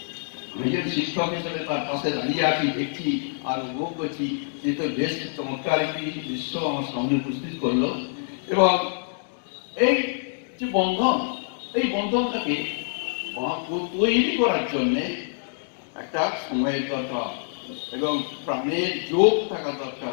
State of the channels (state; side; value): silent; right; digital silence